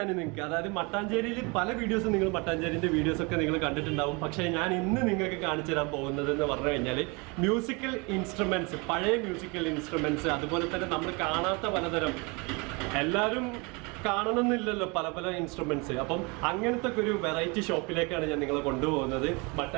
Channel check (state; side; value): quieter; left; 29.1 dB